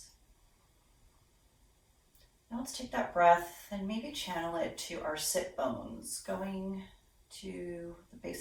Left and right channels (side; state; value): both; identical; correlation 1.00